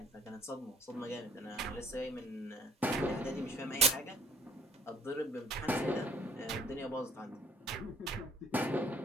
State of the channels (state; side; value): normal; both; correlation 0.59